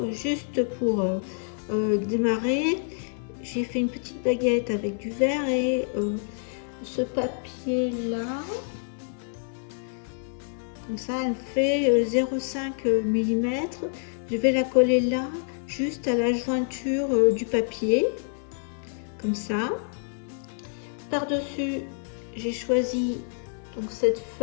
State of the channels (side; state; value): right; silent; 59 dB below the other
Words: juste pour démarrer, j'ai fait une petite baguette avec du verre et ce papier là, comme ça elle fait 0,5 mm. Je vais la coller là, juste à la jointure du papier, comme ça. Par-dessus, j'ai choisi donc cette